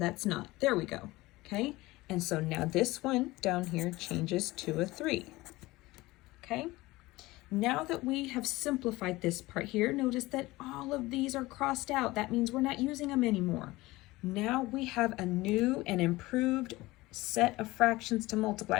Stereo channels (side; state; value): right; quieter; 19.8 dB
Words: not. There we go. Okay? And so now this one down here changes to a 3. Okay? Now that we have simplified this part here, notice that all of these are crossed out. That means we're not using them anymore. Now we have a new and improved set of fractions to